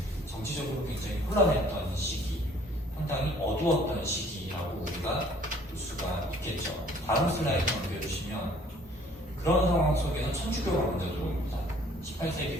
정치적으로 굉장히 혼란했던 시기, 상당히 어두웠던 시기라고 우리가 볼 수가 있겠죠. 다음 슬라이드 넘겨주시면 그런 상황 속에서 천주교가 먼저 들어옵니다.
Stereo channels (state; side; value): normal; both; correlation 0.57